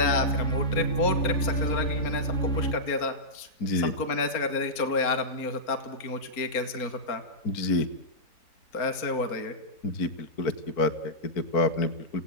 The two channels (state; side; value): late; right; 4.3 ms